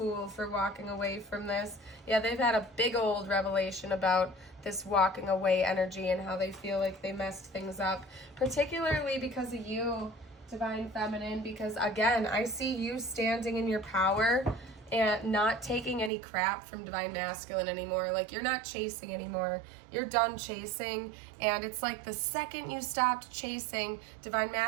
for walking away from this. Yeah, they've had a big old revelation about this walking away energy and how they feel like they messed things up. Particularly because of you, Divine Feminine. Because, again, I see you standing in your power and not taking any crap from Divine Masculine anymore. Like, you're not chasing anymore. You're done chasing. And it's like the second you stopped chasing, Divine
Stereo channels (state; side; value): drops out; left; at 16.1 s